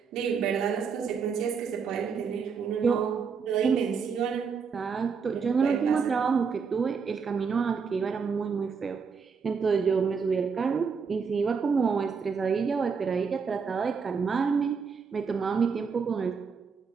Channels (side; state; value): left; quieter; 5.8 dB